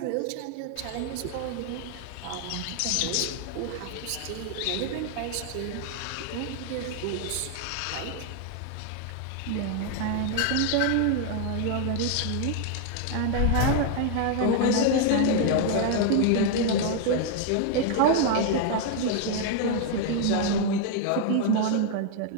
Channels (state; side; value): different; both; correlation 0.00